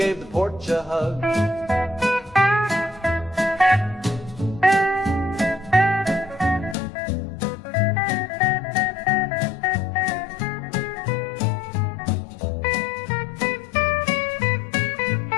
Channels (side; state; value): right; drops out; at 6.8 s